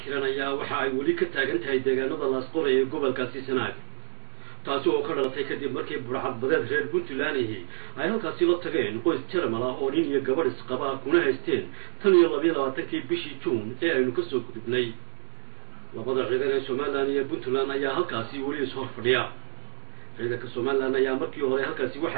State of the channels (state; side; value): silent; left; digital silence